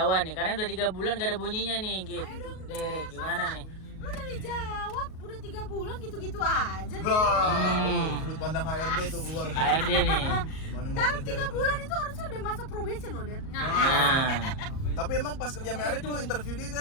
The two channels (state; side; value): late; right; 38 ms